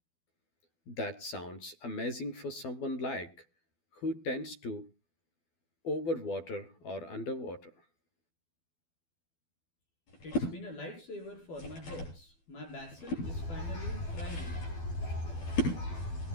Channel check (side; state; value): right; late; 12 ms